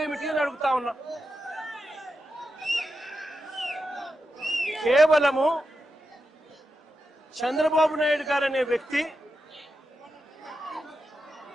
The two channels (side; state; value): both; normal; correlation 0.88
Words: అని అడుగుతా ఉన్నా. కేవలము చంద్రబాబు నాయుడు గారు అనే వ్యక్తి